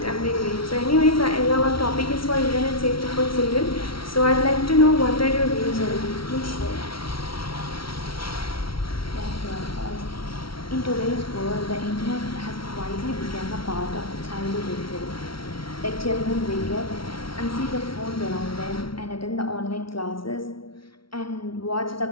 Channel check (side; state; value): right; late; 0.74 ms